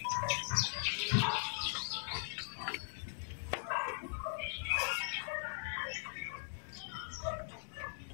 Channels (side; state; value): right; silent; digital silence